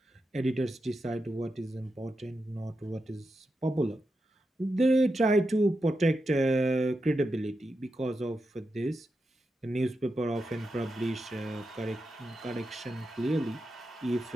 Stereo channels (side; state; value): both; normal; correlation 0.88